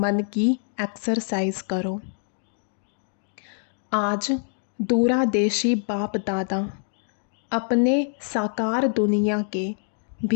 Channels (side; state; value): right; silent; 62 dB below the other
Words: की एक्सरसाइज करो। आज दूरादेशी बाप दादा अपने साकार दुनिया के